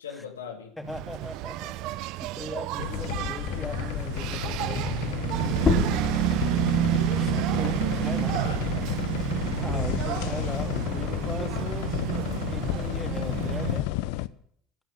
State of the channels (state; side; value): normal; both; correlation 0.21